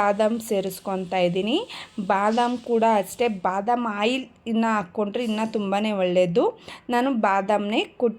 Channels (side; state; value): both; identical; correlation 1.00